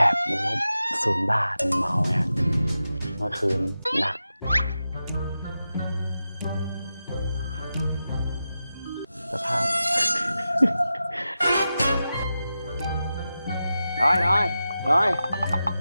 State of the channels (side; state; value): both; inverted; correlation -0.91